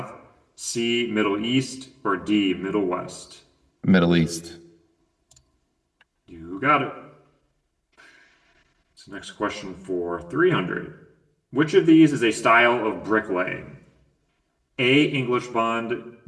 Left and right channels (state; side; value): identical; both; correlation 1.00